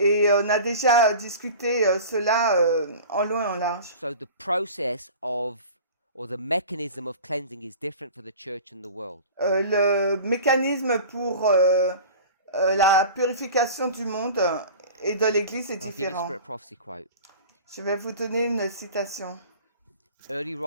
on a déjà discuté cela en long et en large. So the process of, or the mechanism of cleansing is different for the church and the world. Le mécanisme pour la purification du monde et de l'Église est I'll give you a différent. Spirit Prophecy quote. Je vais vous donner une citation. Early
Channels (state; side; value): inverted; both; correlation -0.38